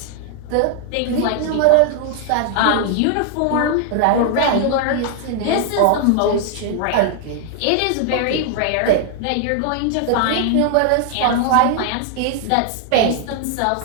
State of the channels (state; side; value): different; both; correlation 0.00